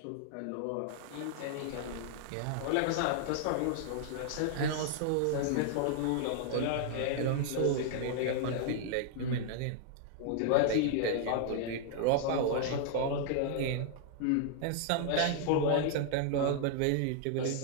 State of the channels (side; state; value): both; different; correlation -0.01